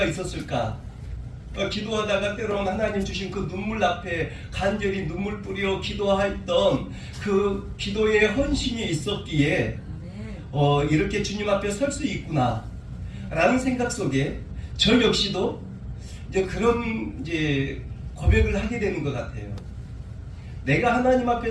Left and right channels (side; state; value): both; identical; correlation 1.00